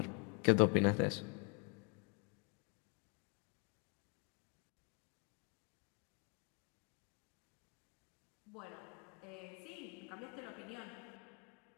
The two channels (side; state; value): right; quieter; 34.1 dB